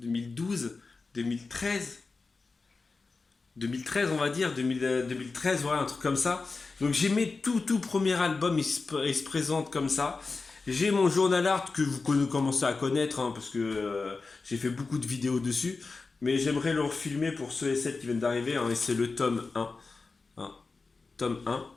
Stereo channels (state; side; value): quieter; right; 4.1 dB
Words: 2013. 2013 on va dire, 2013, voilà, un truc comme ça. Donc j'ai mes tout premier album, il se présente comme ça. J'ai mon journal art que vous commencez à connaître, hein, parce que j'ai fait beaucoup de vidéos dessus. Mais j'aimerais le refilmer pour ceux et celles qui viennent d'arriver, hein, et c'est le tome 1. Hein, tome 1.